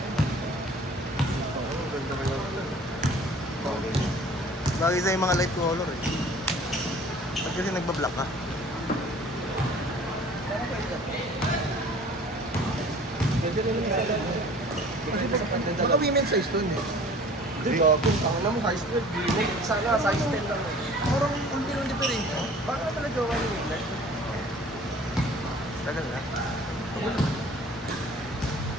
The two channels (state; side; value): normal; both; correlation 0.48